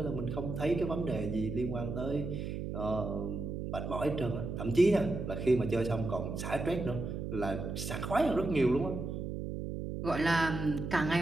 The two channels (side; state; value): right; noise; hum, 5 dB below the sound